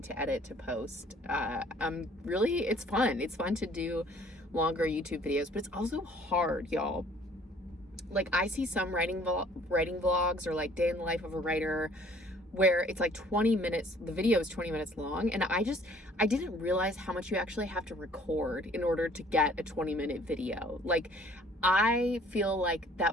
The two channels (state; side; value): normal; both; correlation 0.56